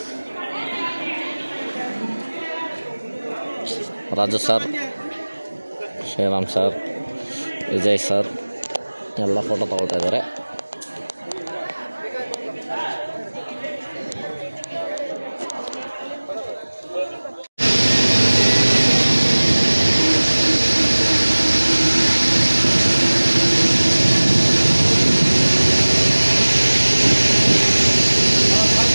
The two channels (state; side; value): inverted; both; correlation -1.00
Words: Raju sir, Sriram sir, Vijay sir ಎಲ್ಲ ಫೋಟೋ ತಗೊಳ್ತಾ ಇದ್ದಾರೆ.